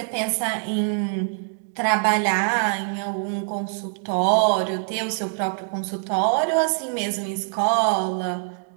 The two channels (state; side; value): silent; left; digital silence